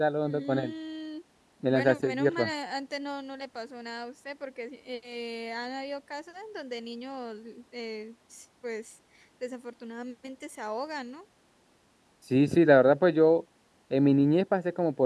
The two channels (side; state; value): both; identical; correlation 1.00